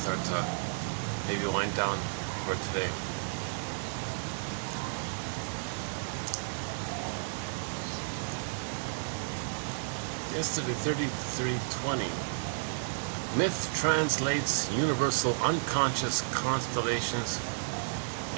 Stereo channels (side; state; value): left; silent; digital silence